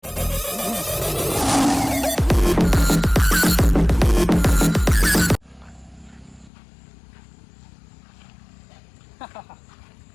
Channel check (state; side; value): drops out; right; at 6.5 s